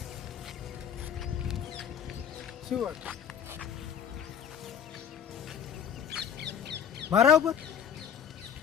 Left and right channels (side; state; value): right; quieter; 8.6 dB